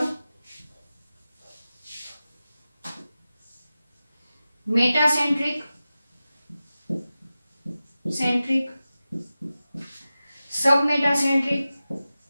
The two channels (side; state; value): both; inverted; correlation -0.95